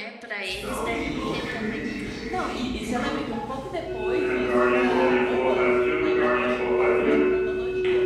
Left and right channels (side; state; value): both; identical; correlation 1.00